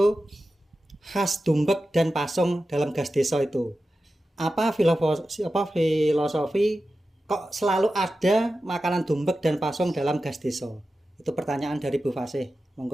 khas Dumbek dan Pasong dalam gas desa itu. Apa filosofi kok selalu ada makanan dumbek dan pasung dalam gas desa? Itu pertanyaan dari Bu Fasih.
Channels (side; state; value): both; normal; correlation 0.93